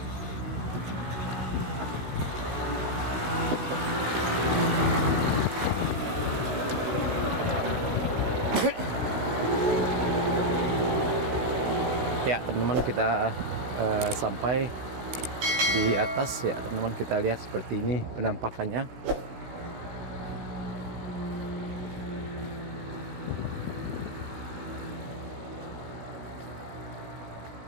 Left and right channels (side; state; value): left; late; 16 ms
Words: Ya teman-teman, kita sampai di atas ya teman-teman. Kita lihat seperti ini penampakannya.